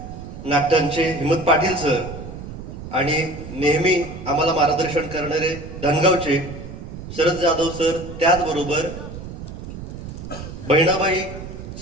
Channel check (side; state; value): right; noise; rumble, 11 dB below the sound